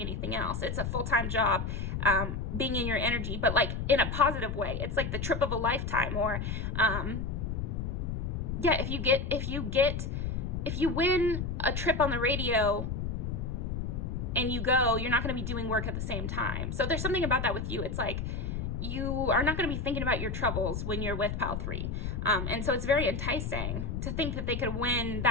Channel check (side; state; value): left; noise; rumble, 3 dB below the sound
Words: anything else. It's a full-time job, being in your energy, but like in a positive way. It's like the trip of a lifetime. Or yeah, if you win a trip on the radio and you go, you're not going to be doing work at the same time. So there's something about that with you. It's like you are not going to be thinking about your troubles when you're with Pile 3. And so it's very enticing to think that they could win